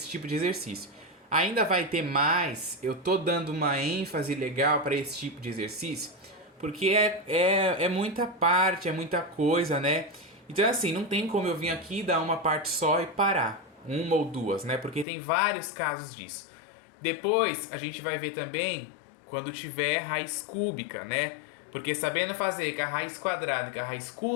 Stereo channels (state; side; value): drops out; right; at 15.1 s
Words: tipo de exercício. Ainda vai ter mais, eu tô dando uma ênfase legal para esse tipo de exercício, porque é muita parte, é muita coisa, né? Então assim, não tem como eu vir aqui dar uma parte só e parar. Uma ou duas, né? Porque tem vários casos disso. Depois a gente vai ver também quando tiver raiz cúbica, né? Porque sabendo fazer com a raiz quadrada e com a raiz